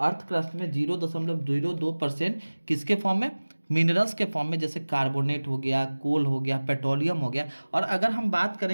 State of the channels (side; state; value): both; inverted; correlation -1.00